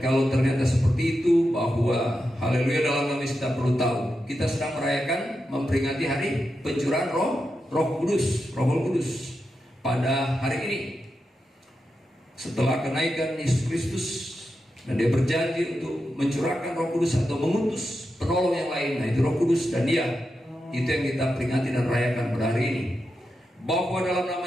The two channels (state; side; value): normal; both; correlation 0.88